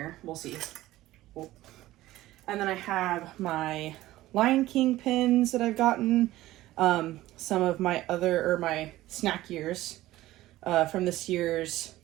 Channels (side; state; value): left; quieter; 16.1 dB